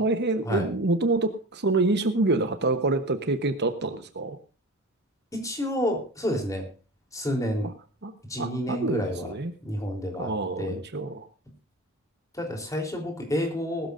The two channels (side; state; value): both; normal; correlation 0.34